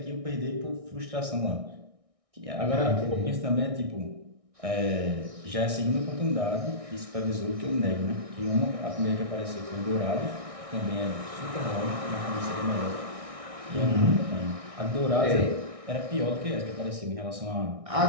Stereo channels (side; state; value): left; late; 1.6 ms